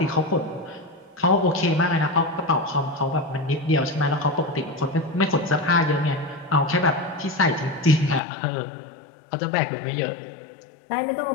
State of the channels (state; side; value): drops out; right; at 8.2 s